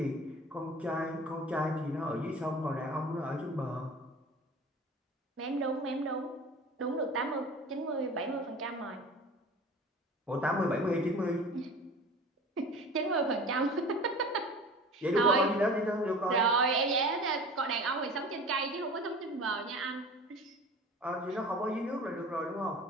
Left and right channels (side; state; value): both; normal; correlation 0.39